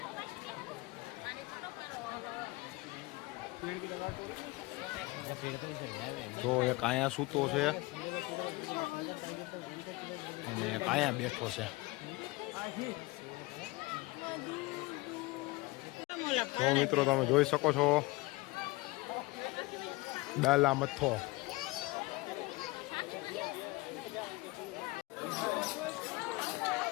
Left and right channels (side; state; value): right; quieter; 22.2 dB